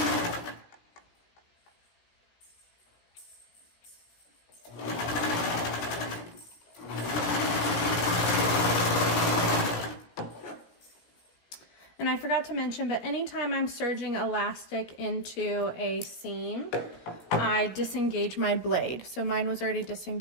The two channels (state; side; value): late; right; 17 ms